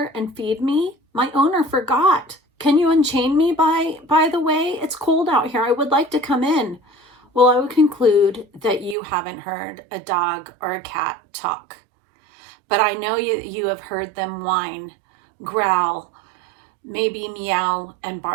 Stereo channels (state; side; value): drops out; left; at 9.0 s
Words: and feed me? My owner forgot. Can you unchain me by the way? It's cold out here. I would like to come in. Well, I would conclude that you haven't heard a dog or a cat talk. But I know you have heard them whine, growl, maybe meow and